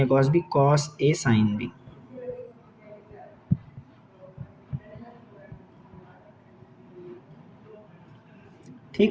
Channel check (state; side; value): identical; both; correlation 1.00